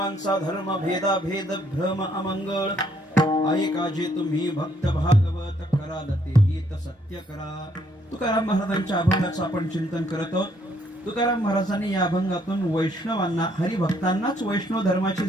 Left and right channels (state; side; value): normal; both; correlation 0.68